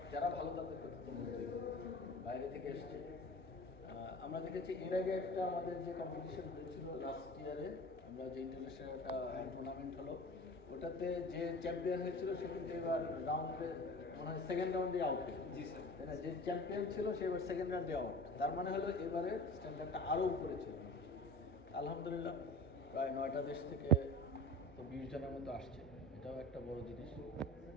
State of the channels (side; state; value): both; normal; correlation 0.37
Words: যারা ভালো তাদেরকে তো বলতেই হবে। বাইরে থেকে এসছে। আমরা দেখেছি এর আগে একটা আমাদের যে কম্পিটিশন হয়েছিল লাস্ট ইয়ারে, আমরা যে ইন্টারন্যাশনাল একটা টুর্নামেন্ট হলো, ওটাতে যে চ্যাম্পিয়ন হয়েছিল সে কিন্তু এবার রাউন্ডে মনে হয় সেকেন্ড রাউন্ডে আউট হয়েছে। জি স্যার, তাই না? যে চ্যাম্পিয়ন ছিল সে এবার সেকেন্ড রাউন্ডে আউট। তার মানে হলো এবারে স্ট্যান্ডার্ডটা আরও উপরে ছিল। আলহামদুলিল্লাহ প্রায় 9টা দেশ থেকে তো 20 জনের মতো আসছে, এটাও একটা বড় জিনিস।